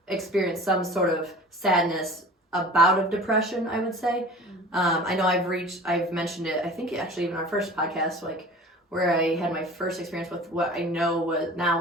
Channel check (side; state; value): both; normal; correlation 0.41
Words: experienced some sort of sadness, a bout of depression, I would say. I know I've mentioned it, I think actually even our first podcast, like where I had my first experience with what I know